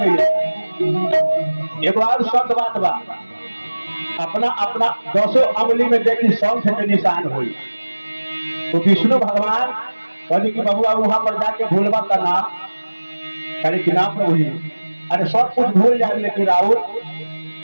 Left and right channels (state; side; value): inverted; both; correlation -1.00